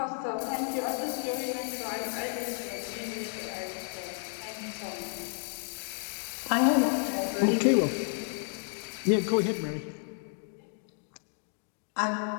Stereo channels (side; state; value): right; silent; 56 dB below the other